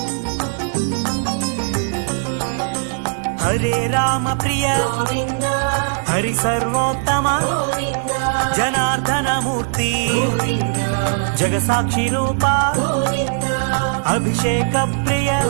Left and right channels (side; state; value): left; silent; digital silence